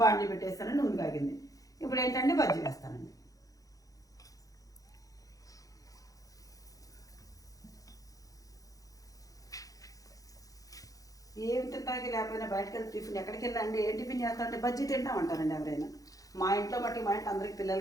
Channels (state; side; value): late; right; 0.17 ms